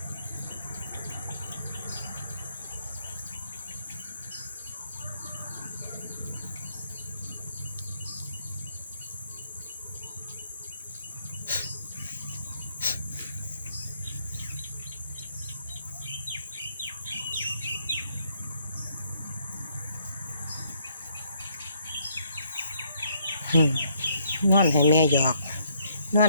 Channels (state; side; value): inverted; both; correlation -0.69